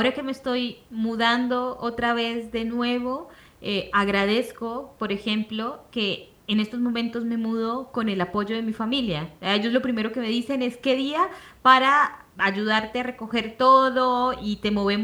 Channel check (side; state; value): both; identical; correlation 1.00